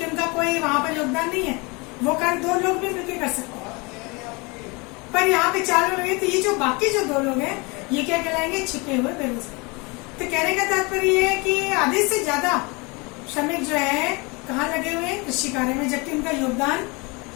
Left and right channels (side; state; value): right; quieter; 27.8 dB